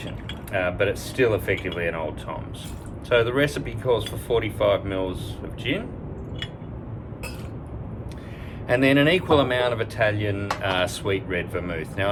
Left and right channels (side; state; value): both; identical; correlation 1.00